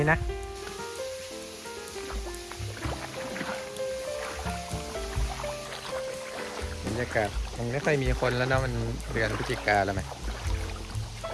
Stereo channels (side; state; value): both; identical; correlation 1.00